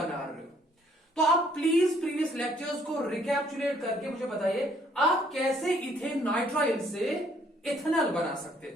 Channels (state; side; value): normal; both; correlation 0.64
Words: रहे हो। तो आप प्लीज प्रीवियस लेक्चर्स को रिकैप्चुलेट करके मुझे बताइए आप कैसे इथेन नाइट्राइल से इथेनॉल बना सकते